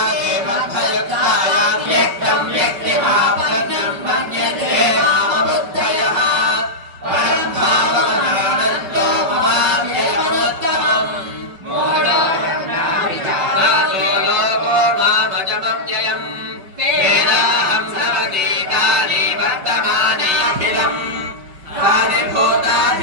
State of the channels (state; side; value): late; left; 5.3 ms